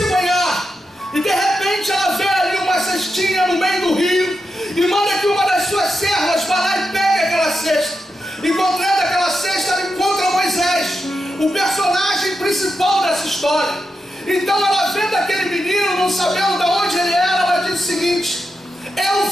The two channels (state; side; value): normal; both; correlation 0.87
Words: banhar, e de repente ela vê ali uma cestinha no meio do rio, e manda que uma das suas servas vá lá e pegue aquela cesta. Encontrando aquela cesta, ela encontra Moisés, o personagem principal dessa história. Então ela vendo aquele menino, não sabendo de onde ele era, ela diz o seguinte: eu